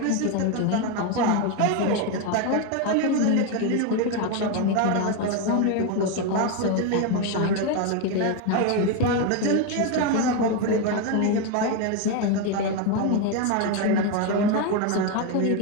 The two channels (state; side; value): different; both; correlation 0.02